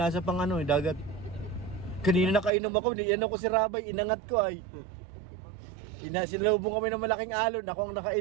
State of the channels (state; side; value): drops out; left; at 2.5 s